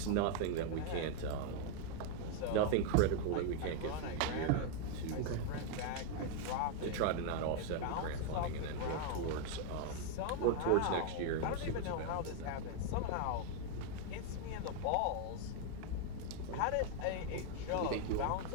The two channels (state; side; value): different; both; correlation 0.00